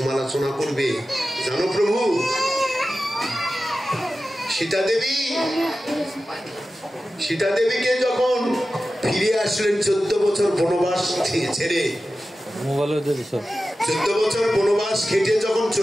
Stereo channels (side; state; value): both; normal; correlation 0.94